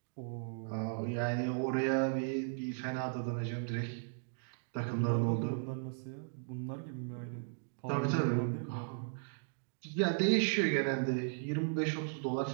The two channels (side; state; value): left; silent; digital silence